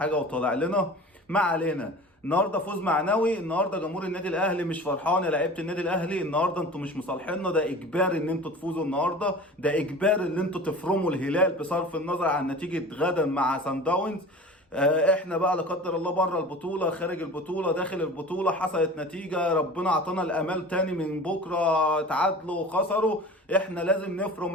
وطالع لنا. ما علينا. النهارده فوز معنوي. النهارده جمهور النادي الاهلي مش فرحان يا لعيبه النادي الاهلي. النهارده انتوا مش مصالحيننا، ده اجباري ان انتوا تفوزوا النهارده. ده اجباري ان انتوا تفرموا الهلال بصرف النظر عن نتيجه غدا مع سان داونز. احنا بقى لا قدر الله بره البطوله، خارج البطوله، داخل البطوله، حصلت نتيجه ربنا اعطانا الامال تاني من بكره تعادلوا وخسروا. احنا لازم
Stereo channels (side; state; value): both; normal; correlation 0.38